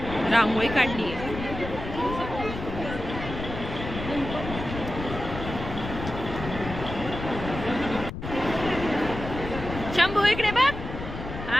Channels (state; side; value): noise; left; rumble, 8 dB below the sound